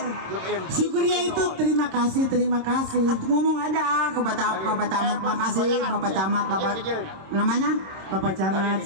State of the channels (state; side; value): late; left; 26 ms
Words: Syukria itu terima kasih. Aku ngomong aja ke Bapak Camat, makasih Bapak Camat, Bapak namanya Bapak Camat,